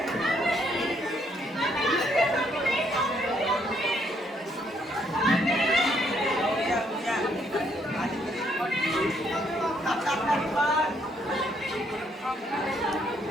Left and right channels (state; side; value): normal; both; correlation 0.70